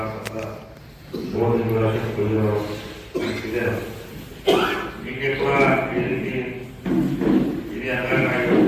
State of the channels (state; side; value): identical; both; correlation 1.00